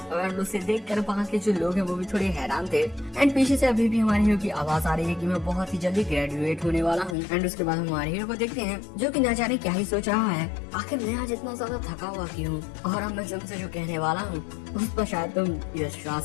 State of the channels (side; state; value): right; drops out; at 7.2 s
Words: और उसे देखकर वहाँ के जो लोग हैं वो भी थोड़े हैरान थे। एंड पीछे से अभी भी हमारे हीरो की आवाज आ रही है कि मैं बहुत ही जल्दी ग्रेजुएट होने वाला हूँ। एंड उसके बाद हम हमारे हीरो को देखते हैं जो कि ना जाने क्या ही सोच रहा है, आखिर मैं आज इतना ज्यादा थका हुआ क्यों और अब मैं तुमसे जो कहने वाला हूँ उस पर शायद तुम